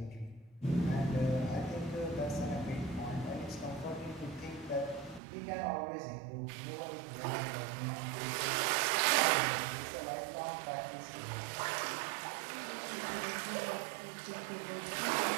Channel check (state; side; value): drops out; left; at 5.2 s